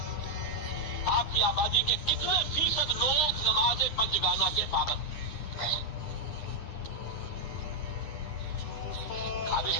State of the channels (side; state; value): right; late; 9.9 ms